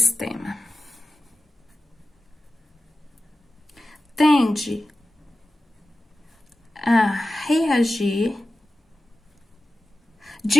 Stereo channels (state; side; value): normal; both; correlation 0.94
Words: tende a reagir